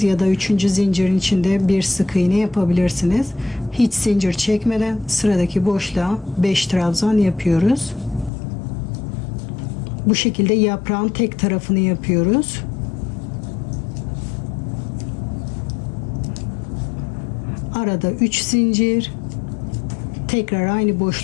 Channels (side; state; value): right; drops out; at 8.3 s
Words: ya da 3. zincirin içinde bir sık iğne yapabilirsiniz. Hiç zincir çekmeden sıradaki boşluğa 5 trabzan yapıyoruz. Bu şekilde yaprağın tek tarafını yapıyoruz. Arada 3 zincir. Tekrar aynı